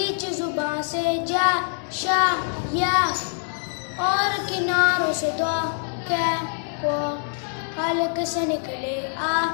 زباں سے جا شا یا، اور کناروں سے دو کے کو، حلق سے نکلے آ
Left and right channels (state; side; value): silent; right; 62 dB below the other